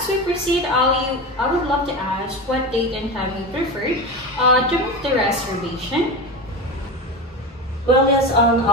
we proceed, Ali, I would love to ask what date and time you prefer to make the reservation. Well, yes,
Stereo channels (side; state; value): both; normal; correlation 0.24